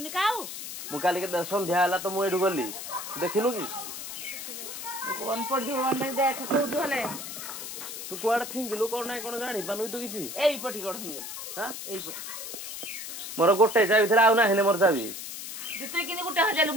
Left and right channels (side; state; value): left; noise; hiss, 8 dB below the sound